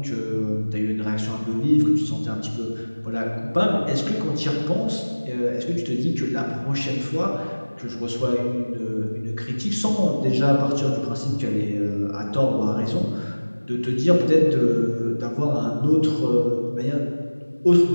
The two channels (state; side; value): inverted; both; correlation -1.00